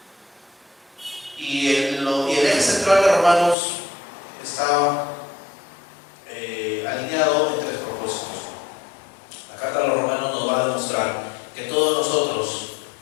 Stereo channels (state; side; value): drops out; right; at 3.6 s